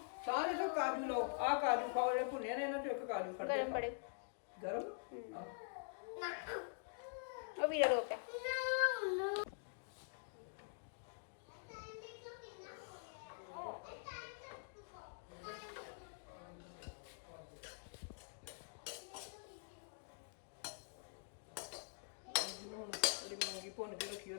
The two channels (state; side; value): silent; right; digital silence